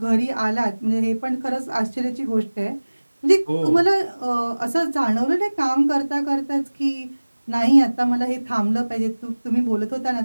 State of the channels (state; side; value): inverted; both; correlation -1.00